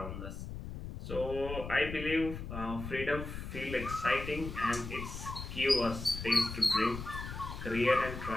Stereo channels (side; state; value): left; noise; rumble, 8 dB below the sound